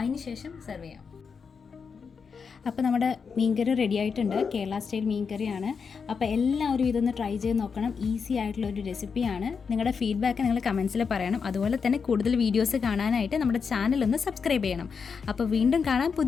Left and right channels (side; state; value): right; quieter; 5.8 dB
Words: ശേഷം സെർവ് ചെയ്യാം. അപ്പോൾ നമ്മുടെ മീൻകറി റെഡി ആയിട്ടുണ്ട്. കേരള സ്റ്റൈൽ മീൻകറിയാണ്. അപ്പോൾ എല്ലാവരും ഇതൊന്ന് ട്രൈ ചെയ്ത് നോക്കണം. ഈസി ആയിട്ടുള്ളൊരു റെസിപ്പിയാണ്. നിങ്ങളുടെ ഫീഡ്ബാക്ക് നിങ്ങൾ കമൻസിൽ പറയണം. അതുപോലെ തന്നെ കൂടുതൽ വീഡിയോസ് കാണാനായിട്ട് നമ്മുടെ ചാനൽ ഒന്ന് സബ്സ്ക്രൈബ് ചെയ്യണം. അപ്പോൾ വീണ്ടും കാണാം